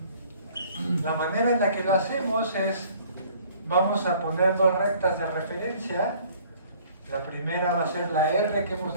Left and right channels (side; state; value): both; inverted; correlation -0.55